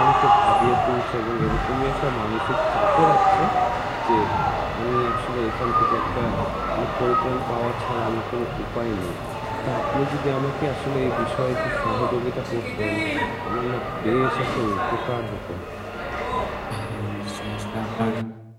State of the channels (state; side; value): identical; both; correlation 1.00